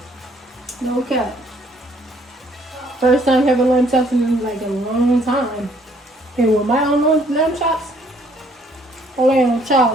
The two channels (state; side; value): normal; both; correlation 0.64